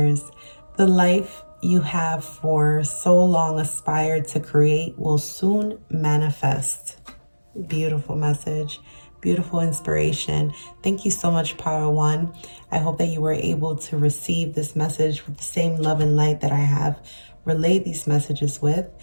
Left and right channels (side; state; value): both; inverted; correlation -1.00